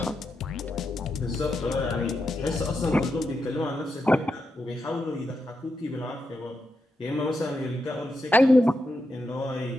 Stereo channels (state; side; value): normal; both; correlation 0.85